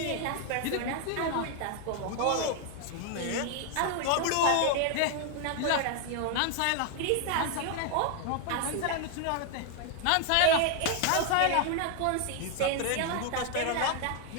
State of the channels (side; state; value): both; different; correlation 0.01